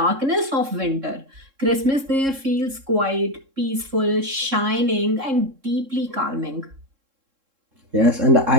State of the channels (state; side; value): late; left; 3.7 ms